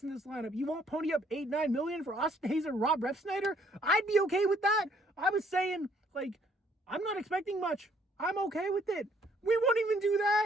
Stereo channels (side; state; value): both; normal; correlation 0.65